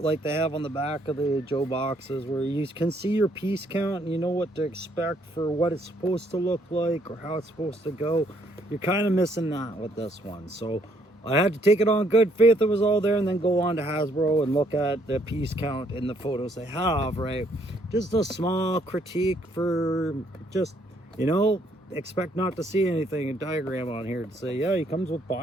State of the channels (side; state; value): both; normal; correlation 0.68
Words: they have on the back of the Joe boxes where you can see your piece count and you know what to expect for what it's supposed to look like or how it's supposed to go. You're kind of missing that with this one. So I had to take it on good faith it was all there and then go on to Hasbro and look at the piece count in the photos they have, right? Just a small critique for just, you know, expect not to see anything, a diagram on here to say, yeah, he comes with